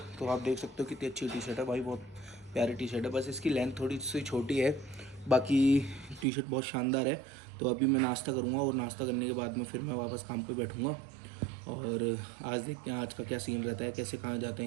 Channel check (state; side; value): drops out; left; at 6.2 s